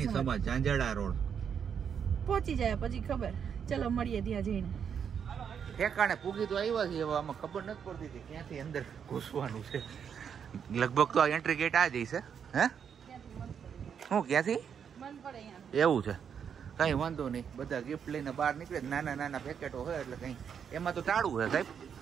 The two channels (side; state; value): left; quieter; 7.5 dB